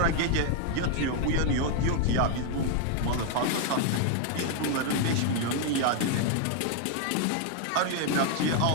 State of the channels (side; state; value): both; different; correlation 0.00